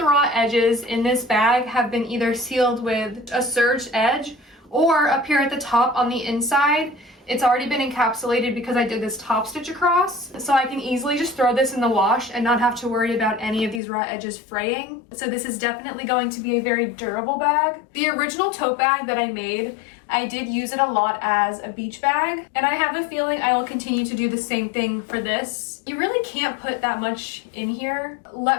raw edges in this bag have been either sealed with a serged edge, or up here at the top on the inside, It's already been encapsulated because I did this top stitch across, so I can easily just throw this in the wash and not have to worry about any of these raw edges fraying. So this is definitely going to be a very durable bag. The original tote bag that I made, I did use it a lot as a beach bag, and I have a feeling I will continue to do the same thing for this. You really can't put that much in here.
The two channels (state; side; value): drops out; right; at 13.8 s